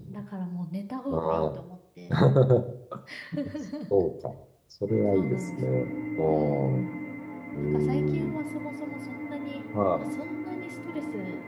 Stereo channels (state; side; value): identical; both; correlation 1.00